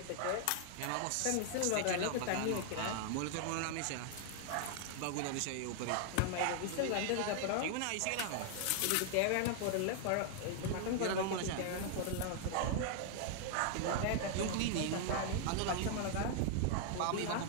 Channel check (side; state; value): both; different; correlation 0.00